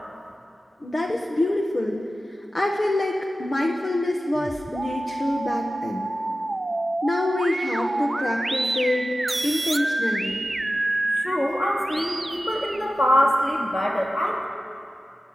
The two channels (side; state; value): both; normal; correlation 0.94